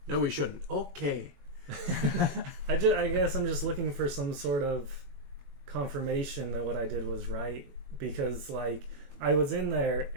No, we shouldn't. Okay. I guess I'm just looking for some sort of confirmation that what I did was right. Because, like, I was in there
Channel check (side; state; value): left; late; 21 ms